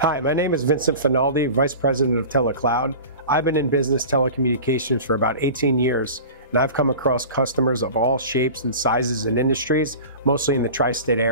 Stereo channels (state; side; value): inverted; both; correlation -0.36